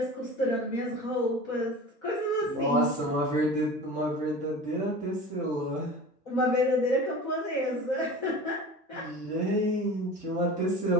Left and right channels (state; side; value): normal; both; correlation 0.36